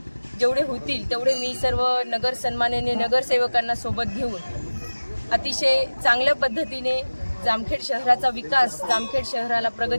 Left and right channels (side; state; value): both; inverted; correlation -1.00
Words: जेवढे होतील तेवढे मी सर्व नगर सन्माननीय नगरसेवकांना सोबत घेऊन अतिशय चांगल्या पद्धतीने जामखेड शहराचा विकास, जामखेड शहराला